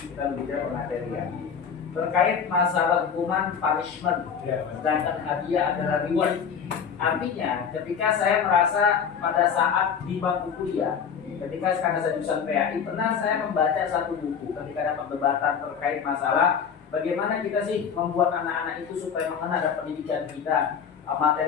berbicara pemateri ya, terkait masalah hukuman punishment, sedangkan hadiah adalah reward. Artinya, ketika saya merasa pada saat di bangku kuliah, ketika karena saya jurusan PAI, pernah saya membaca satu buku ketika ada perdebatan terkait masalah bagaimana kita sih membuat anak-anak itu supaya mengenal ada pendidikan kita,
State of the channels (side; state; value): right; quieter; 7.0 dB